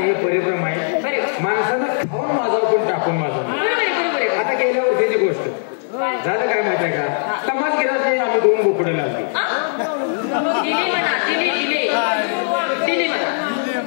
परिभ्रम आहे बरोबर माणसानं खाऊन माझा पण टाकून माझा बरोबर आता गेल्या वर्षीची गोष्ट झालं काय माहिती आहे का तमास गेला ते आम्ही 2 बोकडे लागले दिली म्हणा दिली म्हणा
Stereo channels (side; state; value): right; silent; digital silence